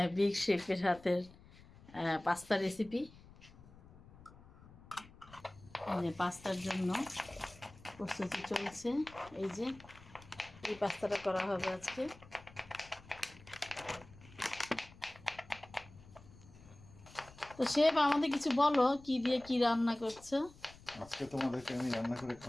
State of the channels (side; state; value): left; noise; rumble, 21 dB below the sound